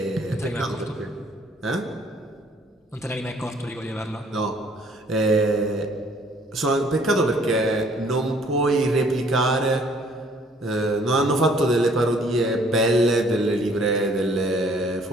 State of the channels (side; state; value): both; normal; correlation 0.60